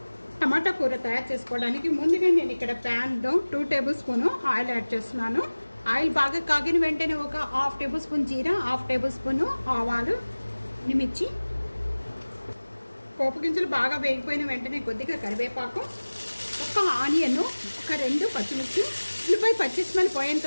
టమాటా కూర తయారు చేసుకోవడానికి ముందుగా నేను ఇక్కడ ప్యాన్లో 2 టేబుల్ స్పూన్ ఆయిల్ యాడ్ చేస్తున్నాను. ఆయిల్ బాగా కాగిన వెంటనే ఒక 1/2 టేబుల్ స్పూన్ జీరా, 1/2 టేబుల్ స్పూన్ ఆవాలు, మిర్చి, పోపు గింజలు బాగా వేగిపోయిన వెంటనే కొద్దిగా కరివేపాకు, ఒక ఆనియన్, ఒక 2 పచ్చిమిర్చి, ఉల్లిపాయ పచ్చి స్మెల్ పోయేంత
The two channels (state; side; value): inverted; both; correlation -1.00